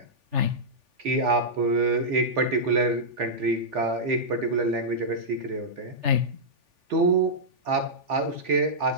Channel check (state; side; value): late; left; 3.4 ms